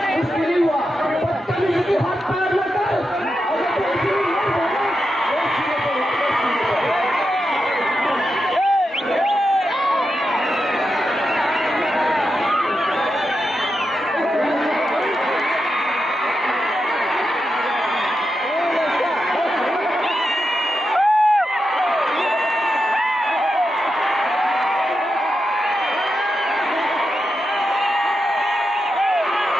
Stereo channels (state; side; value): normal; both; correlation 0.88